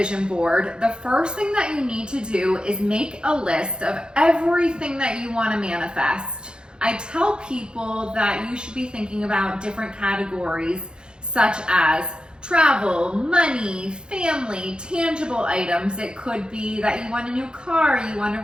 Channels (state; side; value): late; left; 0.049 ms